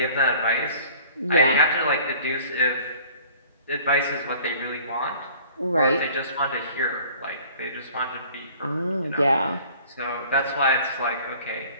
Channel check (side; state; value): both; inverted; correlation -0.50